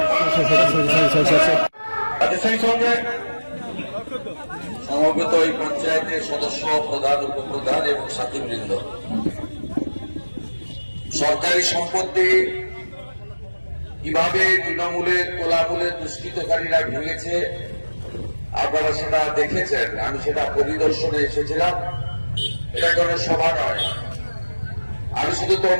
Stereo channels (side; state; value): both; inverted; correlation -1.00